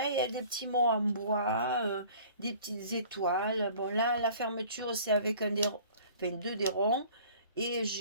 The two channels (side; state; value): both; inverted; correlation -0.49